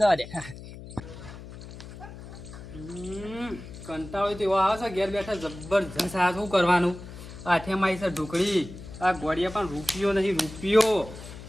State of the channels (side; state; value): left; noise; hum, 14 dB below the sound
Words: જવા દે. કંટાળો તેવો આવે છે ઘેર બેઠા જબરજસ્ત. આ શું કરવાનું? આઠેમાં આવી છે ઢોકળી. આ ગોળિયા પણ રૂપિયો નહીં રૂપિયો.